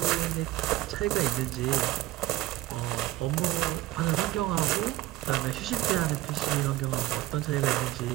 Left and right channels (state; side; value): quieter; left; 16.2 dB